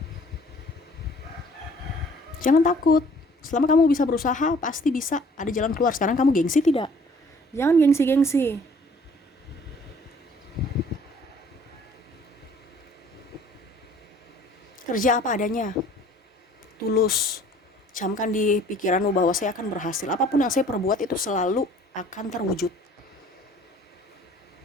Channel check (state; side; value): normal; both; correlation 0.55